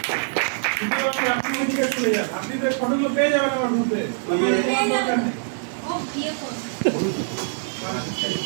আপনি তো ফটোগুলো পেয়ে যাবেন আমার গ্রুপে। ও বিয়ে করবে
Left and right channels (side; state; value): left; silent; 59 dB below the other